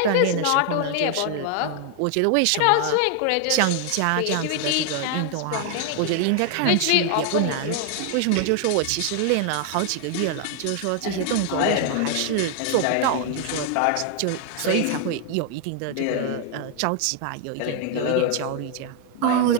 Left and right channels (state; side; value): different; both; correlation 0.00